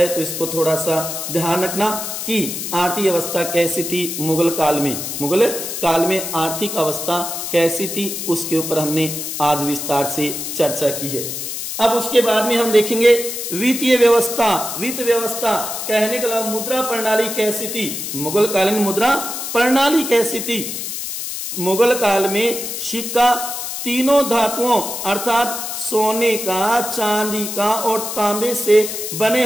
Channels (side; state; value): left; noise; hiss, 5 dB below the sound